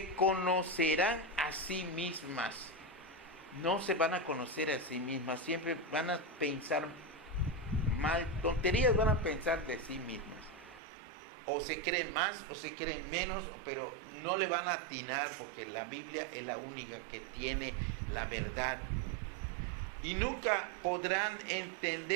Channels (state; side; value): drops out; left; at 10.8 s